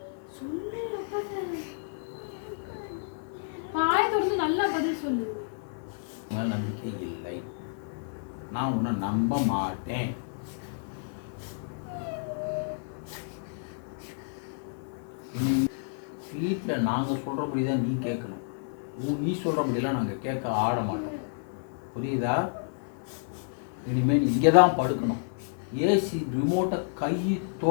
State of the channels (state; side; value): silent; right; 56 dB below the other